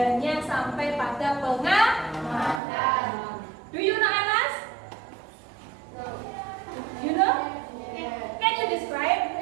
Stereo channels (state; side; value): drops out; left; at 2.6 s